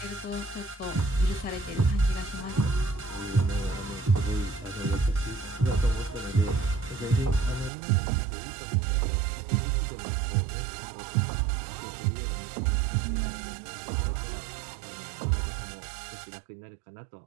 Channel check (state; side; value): drops out; left; at 7.7 s